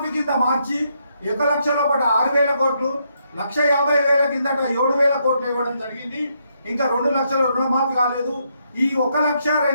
కింద మార్చి 1 లక్ష లోపల 6,000 కోట్లు, 1,50,000 కిందట 7,000 కోట్లు ఇవ్వడం జరిగింది. ఇంకా 2 లక్షల రుణమాఫీ కాలేదు. ఈ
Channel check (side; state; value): both; inverted; correlation -0.77